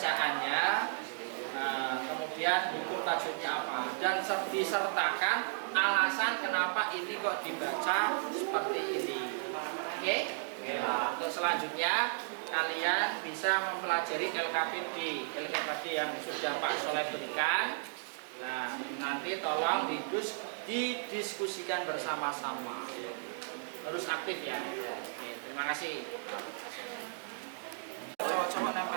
Kemudian hukum tajwidnya apa dan disertakan alasan kenapa ini kok dibaca seperti ini. Oke? Untuk selanjutnya kalian bisa mempelajari LKPD yang sudah Pak Soleh berikan. Nah, nanti tolong didiskusikan bersama-sama. Harus aktif ya. Oke, terima kasih. Coba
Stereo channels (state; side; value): silent; left; digital silence